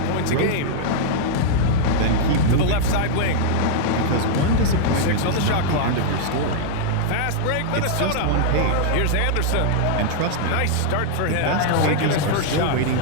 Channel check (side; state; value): both; different; correlation -0.01